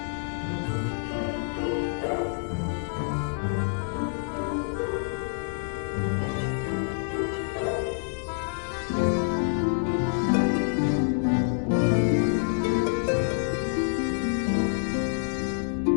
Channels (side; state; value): right; silent; digital silence